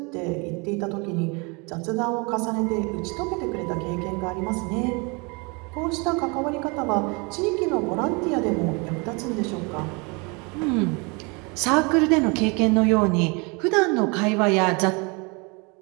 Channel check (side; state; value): left; quieter; 30.0 dB